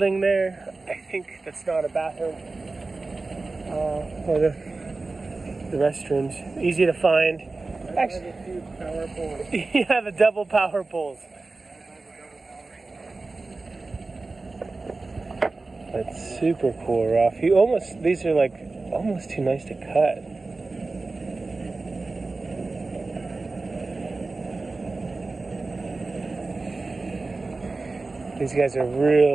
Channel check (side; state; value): left; quieter; 3.5 dB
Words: there, I think that's not a bathroom. Or the restrooms. Easy to find. Actually, power poles. yeah, the double power poles. That's super cool, Ralph. These are like almost too nice to cut. These guys are